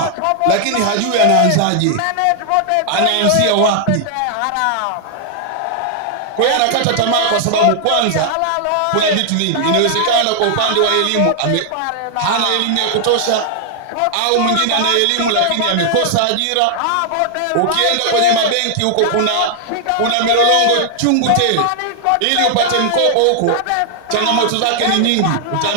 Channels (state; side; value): different; both; correlation 0.00